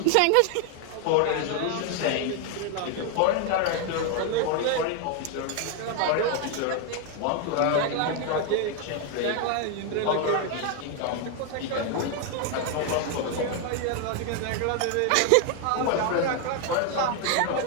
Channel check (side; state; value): both; different; correlation 0.01